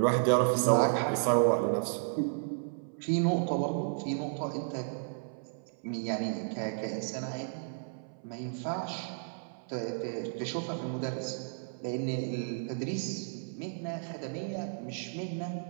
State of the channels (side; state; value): left; silent; 56 dB below the other